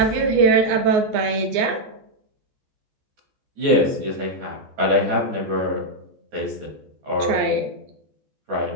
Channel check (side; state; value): left; late; 14 ms